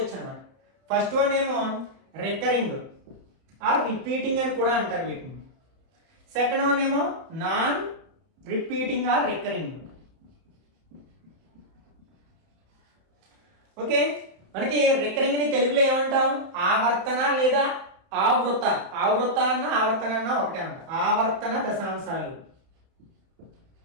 అనమాట. ఫస్ట్ వన్ ఏమో రికరింగ్ ఆర్ రిపీటింగ్ అని కూడా అంటారు వీటిని. సెకండ్ వన్ ఏమో non repeating or recurring. Okay, మనకి రికరింగ్ ని తెలుగులో ఏమంటాం? ఆవర్తన లేదా ఆవృత. ఆవృత అన్న ఆవర్తన అన్న ఒకటే అంట. ఆవర్తన దశాంశాలు.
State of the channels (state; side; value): late; left; 31 ms